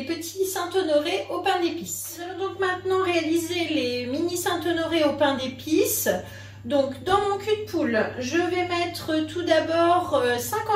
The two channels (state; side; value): identical; both; correlation 1.00